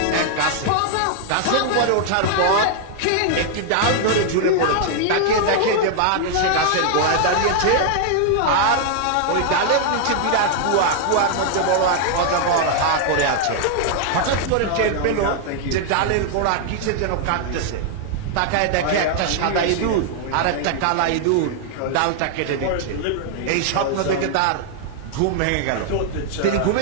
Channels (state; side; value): different; both; correlation 0.00